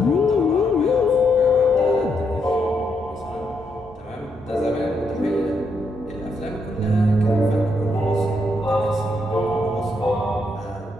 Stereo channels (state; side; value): normal; both; correlation 0.78